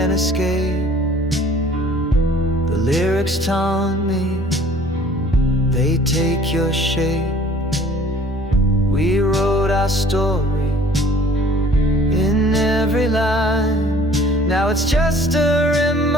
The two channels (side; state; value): both; normal; correlation 0.53